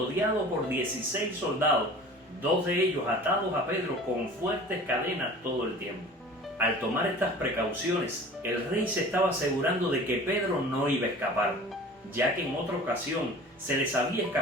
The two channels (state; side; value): normal; both; correlation 0.42